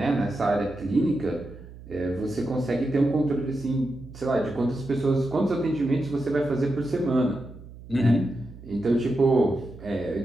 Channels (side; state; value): right; noise; hum, 17 dB below the sound